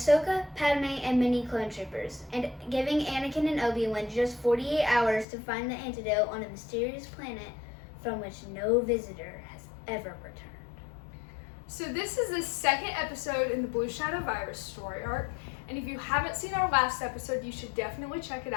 Padme, and many clone troopers, and giving Anakin and Obi-Wan just 48 hours to find the antidote on a mysterious planet from which no visitor has ever returned. So this is the second episode in the Blue Shadow virus story arc, and if you haven't seen our last episode, you should definitely check it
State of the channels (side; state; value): right; drops out; at 5.2 s